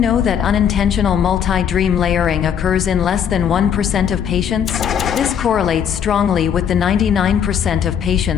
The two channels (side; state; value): right; quieter; 8.3 dB